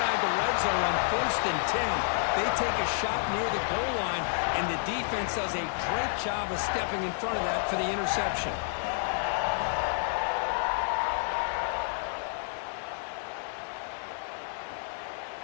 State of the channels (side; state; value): right; silent; digital silence